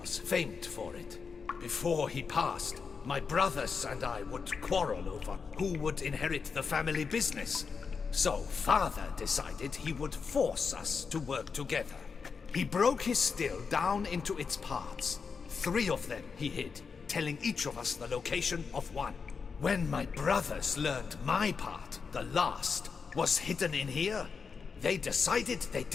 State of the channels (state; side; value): quieter; right; 5.5 dB